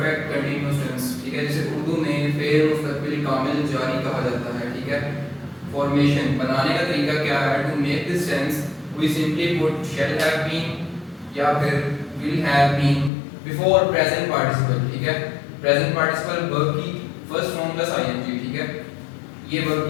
continuous tense. ठीक है, जिसे उर्दू में फेर मुस्तकबिल कामिल जारी कहा जाता है। ठीक है, फॉर्मेशन बनाने का तरीका क्या है? To make this tense we simply put shall have been या फिर will have been before present participle. ठीक है, प्रेजेंट पार्टिसिपल वर्ब की फर्स्ट फॉर्म प्लस आईएनजी। ठीक है, ये वर्ब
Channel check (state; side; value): drops out; right; at 13.1 s